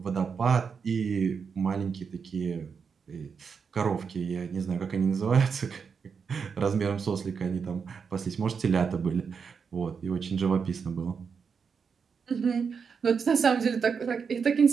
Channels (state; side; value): quieter; left; 6.0 dB